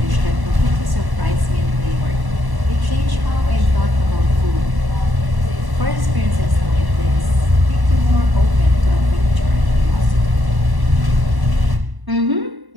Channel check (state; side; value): late; left; 1.1 ms